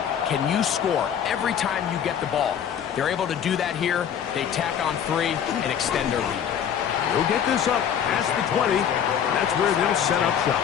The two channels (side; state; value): right; quieter; 8.7 dB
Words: Can you score every time you get the ball? They're able to do that here. They tack on 3 and extend their lead. They'll get this up past the 20. That's where they'll set up shop.